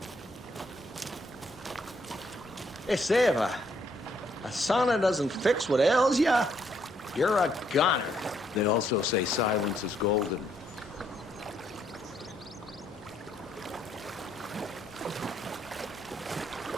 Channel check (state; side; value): normal; both; correlation 0.71